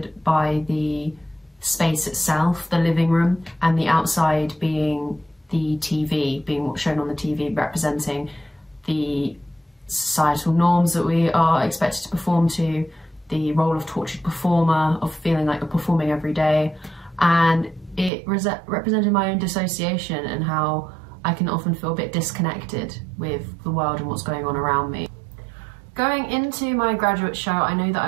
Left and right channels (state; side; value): drops out; left; at 18.1 s